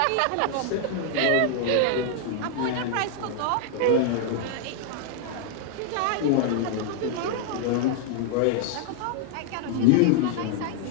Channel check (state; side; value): different; both; correlation 0.00